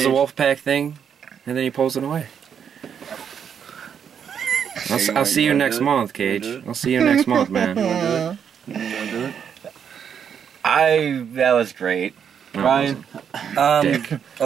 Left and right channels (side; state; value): left; quieter; 7.8 dB